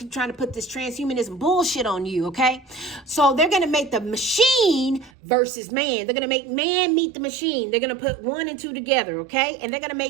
trying to put this transhumanism bullshit on you, okay? So they're going to make the machine versus man. They're going to make man meet the machine. They're going to put 1 and 2 together, okay? And they're going to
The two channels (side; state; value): left; drops out; at 5.1 s